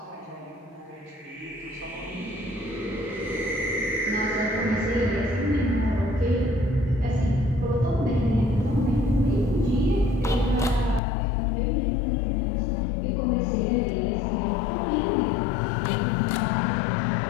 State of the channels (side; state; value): right; drops out; at 11.0 s